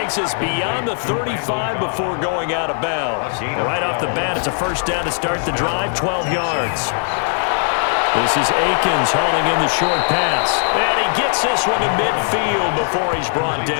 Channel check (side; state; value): right; silent; 58 dB below the other